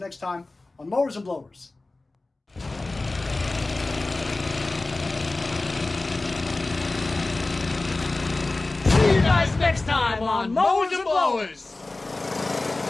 time on Mowers and Blowers. See you guys next time on Mowers and Blowers.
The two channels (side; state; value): right; quieter; 3.1 dB